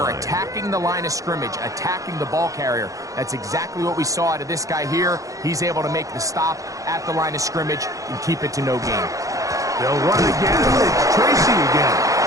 attacking the line of scrimmage, attacking the ball carrier. That's exactly what we saw out of this guy here. He's able to make the stop at the line of scrimmage and keep it to no gain. They'll run again. It's Tracy again.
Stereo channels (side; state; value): left; late; 0.16 ms